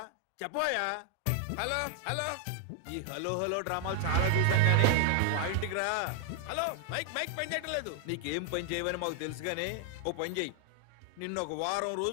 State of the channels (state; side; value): different; both; correlation 0.00